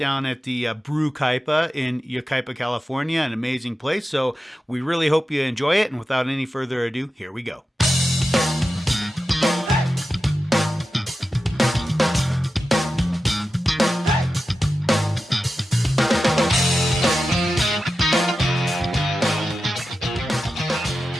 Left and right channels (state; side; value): normal; both; correlation 0.92